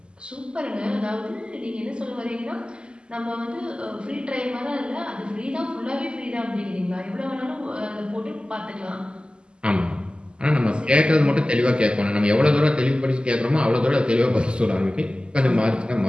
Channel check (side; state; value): left; late; 0.049 ms